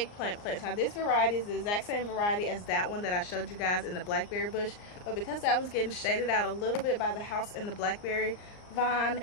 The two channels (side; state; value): right; late; 39 ms